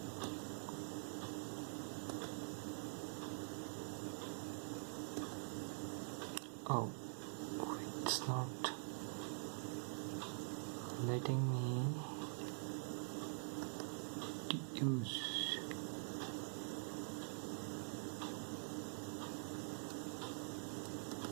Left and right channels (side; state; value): left; silent; digital silence